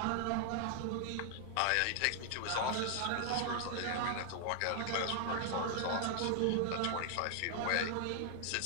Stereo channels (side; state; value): both; different; correlation 0.00